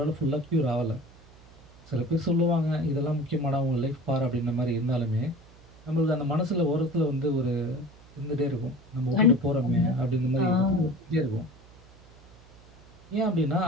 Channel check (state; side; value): noise; right; hum, 25 dB below the sound